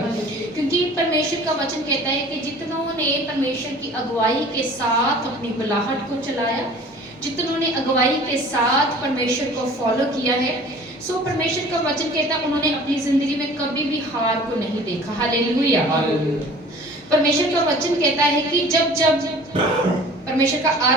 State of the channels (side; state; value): both; normal; correlation 0.46